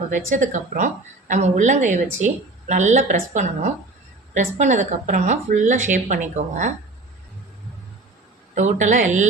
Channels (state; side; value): quieter; left; 3.1 dB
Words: வச்சதுக்கப்புறம் நம்ம உள்ளங்கையை வச்சு நல்லா ப்ரெஸ் பண்ணணும். ப்ரெஸ் பண்ணதுக்கப்புறமா ஃபுல்லாக ஷேப் பண்ணிக்கோங்க. டோட்டலாக